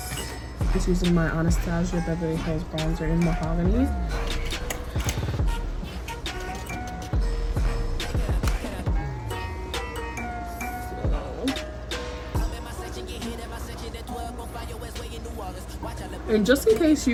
Just using my Anastasia Beverly Hills bronzer in Mahogany. And just in case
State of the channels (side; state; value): both; identical; correlation 1.00